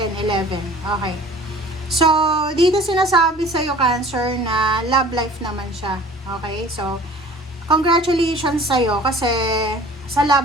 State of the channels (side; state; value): both; normal; correlation 0.46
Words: 11. Okay. So, dito sinasabi sa'yo, Cancer, na love life naman siya. Okay? So, congratulations sa'yo kasi sa